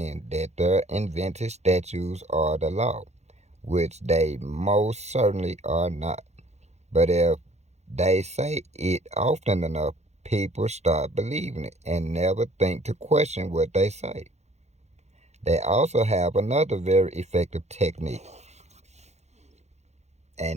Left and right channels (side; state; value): left; late; 0.32 ms